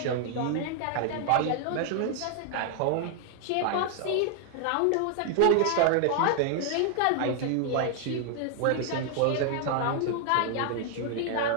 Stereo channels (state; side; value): different; both; correlation 0.00